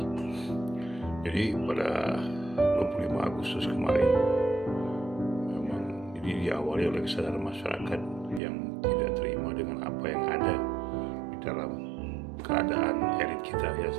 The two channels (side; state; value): left; drops out; at 8.4 s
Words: Jadi pada 25 Agustus kemarin, memang ini diawali oleh kesadaran masyarakat yang tidak terima dengan apa yang ada di dalam keadaan elit kita yang